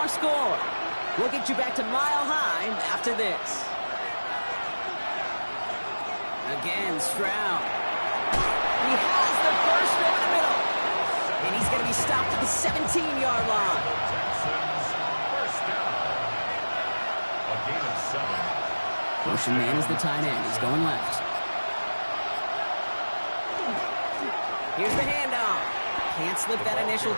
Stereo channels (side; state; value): both; inverted; correlation -1.00